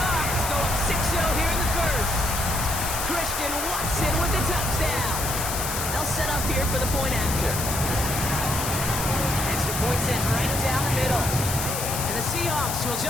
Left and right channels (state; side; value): noise; left; hiss, 3 dB below the sound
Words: go up 6-0 here in the first. Christian Watson with the touchdown. They'll set up here for the point after. Extra point sent right down the middle. And the Seahawks will